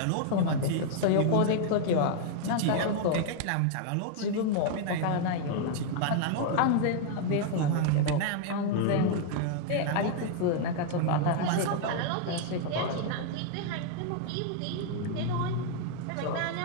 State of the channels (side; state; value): both; different; correlation 0.00